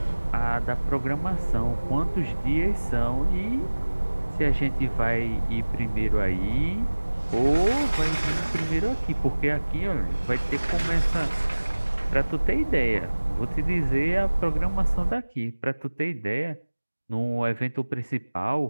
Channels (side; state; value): both; inverted; correlation -1.00